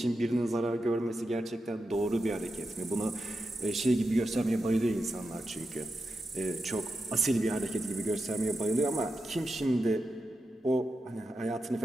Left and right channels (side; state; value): both; normal; correlation 0.89